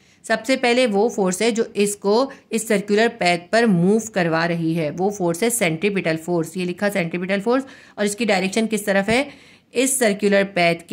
सबसे पहले वो फोर्स है जो इसको इस सर्कुलर पैथ पर मूव करवा रही है, वो फोर्स है सेंट्रीपिटल फोर्स। ये लिखा सेंट्रीपिटल फोर्स, और इसकी डायरेक्शन किस तरफ है? इस सर्कुलर पैथ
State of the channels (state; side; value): identical; both; correlation 1.00